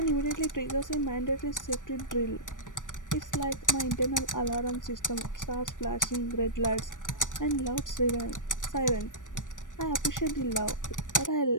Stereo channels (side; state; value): right; late; 0.88 ms